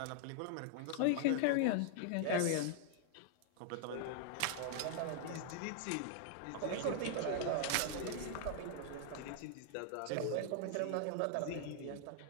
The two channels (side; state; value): both; different; correlation 0.00